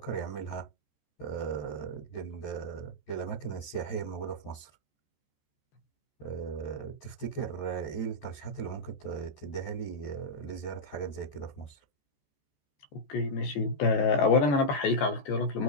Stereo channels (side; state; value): right; late; 14 ms